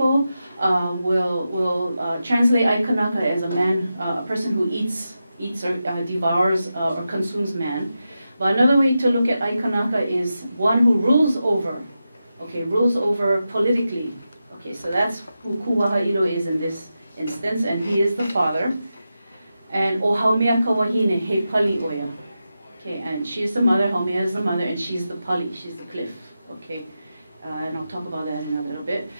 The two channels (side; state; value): both; inverted; correlation -0.90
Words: will translate aikanaka as a man, a person who eats or devours or consumes man. But another way to look at aikanaka is one who rules over, okay, rules over politically. Okay, so that's who kuwaha ilo is in this instance, and he is the father. And o haumea kawahine he pali oya. Okay, and she's the mother, Haumea is the mother, and she's the pali, she's the cliff. Okay, and I'll talk about that in a little bit.